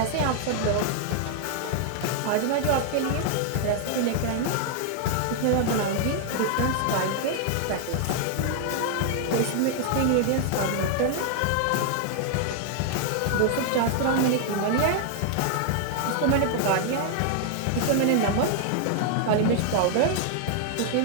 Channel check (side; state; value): both; different; correlation 0.00